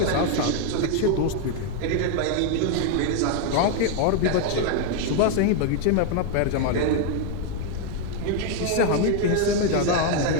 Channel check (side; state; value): both; different; correlation 0.01